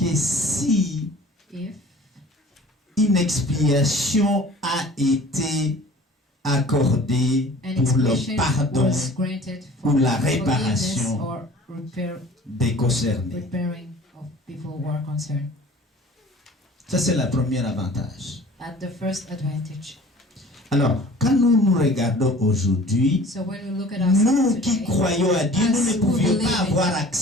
si if une expiation a été accordée an pour le expiation pardon was granted for ou la forgiveness réparation or des concernés. repairing of people who are concerned. Ça, c'est le premier avantage. At the first advantage. Alors, quand nous regardons aujourd'hui, So when we look at nous ourselves qui today, croyons à Dieu, nous as ne who pouvions believe pas in avoir God,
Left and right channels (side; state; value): both; normal; correlation 0.47